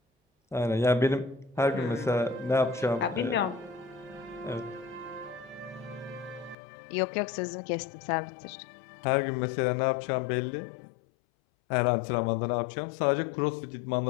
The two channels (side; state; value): right; drops out; at 6.6 s